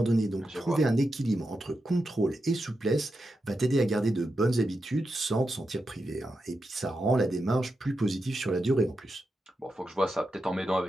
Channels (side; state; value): both; normal; correlation 0.88